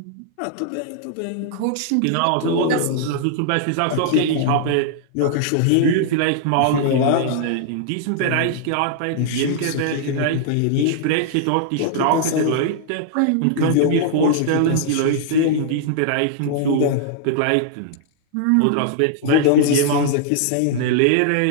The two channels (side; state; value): both; different; correlation -0.01